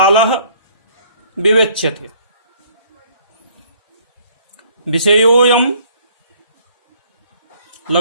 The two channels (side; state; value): both; inverted; correlation -0.59